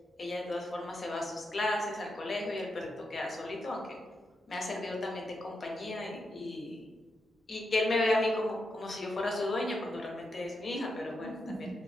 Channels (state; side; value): normal; both; correlation 0.85